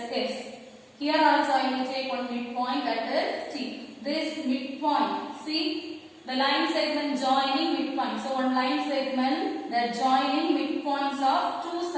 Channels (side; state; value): both; identical; correlation 1.00